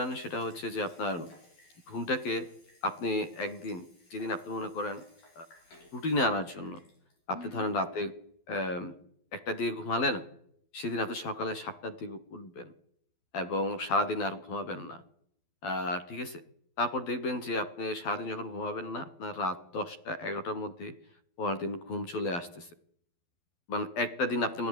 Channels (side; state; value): right; late; 12 ms